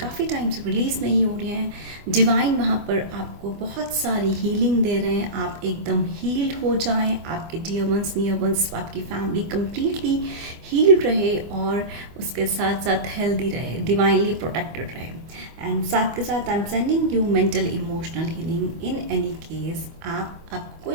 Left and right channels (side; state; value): left; late; 24 ms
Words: टाइम से रिलीज़ नहीं हो रहे हैं, डिवाइन वहाँ पर आपको बहुत सारी हीलिंग दे रहे हैं। आप एकदम हील्ड हो जाएं, आपके डियर वंस, नियर वंस, आपकी फैमिली कंप्लीटली हील्ड रहे और उसके साथ साथ हेल्दी रहे, डिवाइनली प्रोटेक्टेड रहे। एंड साथ के साथ I am sending you mental emotional healing. In any case आपको